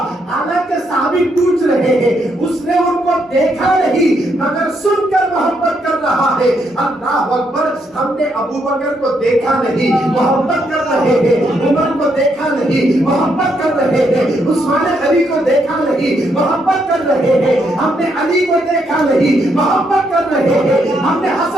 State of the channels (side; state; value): both; normal; correlation 0.76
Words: حالانکہ صحابی پوچھ رہے ہیں اس نے ان کو دیکھا نہیں مگر سن کر محبت کر رہا ہے. اللہ اکبر, ہم نے ابو بکر کو دیکھا نہیں محبت کر رہے ہیں, عمر کو دیکھا نہیں محبت کر رہے ہیں, عثمان علی کو دیکھا نہیں محبت کر رہے ہیں, ہم نے علی کو دیکھا نہیں محبت کر رہے ہیں, ہم نے